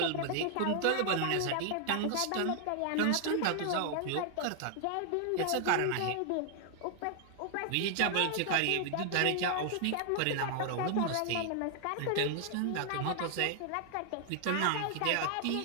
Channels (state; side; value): different; both; correlation 0.00